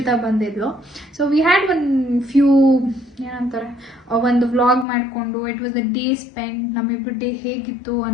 ಬಂದಿದ್ಲು. ಸೊ ವಿ ಹ್ಯಾಡ್ ಫ್ಯೂ ಏನಂತಾರೆ ಒಂದು ವ್ಲಾಗ್ ಮಾಡಿಕೊಂಡು it was a day spend. ನಮ್ಮಿಬ್ಬರು ಡೇ ಹೇಗಿತ್ತು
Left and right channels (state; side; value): drops out; right; at 4.9 s